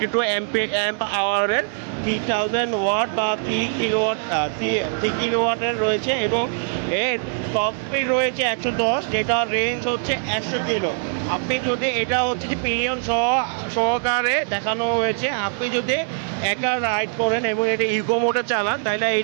অ্যাম্প আওয়ারের 3000 ওয়াট বা 3 কিলোওয়াটের রয়েছে এবং এর টপ স্পিড রয়েছে 110, যেটা রেঞ্জ হচ্ছে 100 কিলো। আপনি যদি এটা হচ্ছে যে পিলিয়ন সহকারে দেখানো হয়েছে, আপনি যদি একা রাইড করেন এবং এটা ইকো মোডে চালান তাহলে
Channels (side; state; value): left; silent; digital silence